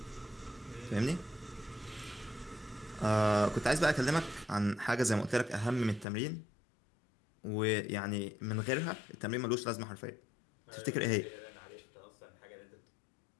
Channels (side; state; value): right; drops out; at 6.1 s